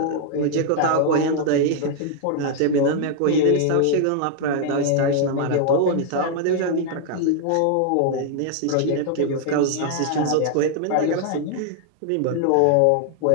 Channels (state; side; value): different; both; correlation 0.00